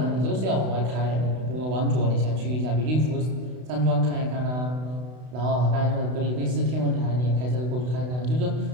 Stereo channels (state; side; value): late; left; 32 ms